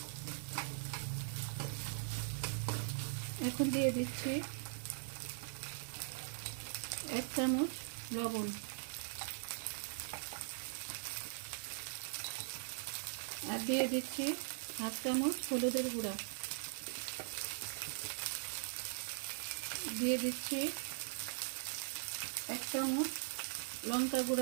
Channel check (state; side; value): silent; left; 50 dB below the other